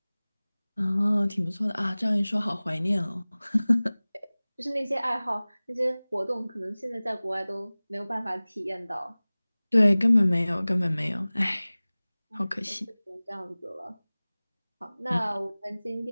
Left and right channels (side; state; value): both; inverted; correlation -0.99